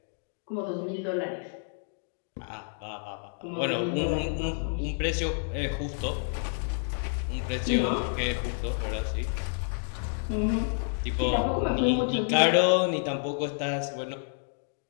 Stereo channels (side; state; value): right; silent; digital silence